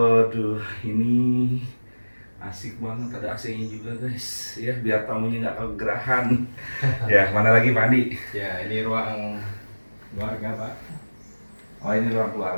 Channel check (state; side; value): inverted; both; correlation -1.00